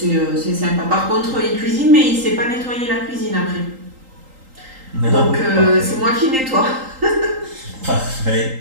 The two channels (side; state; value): left; late; 3.8 ms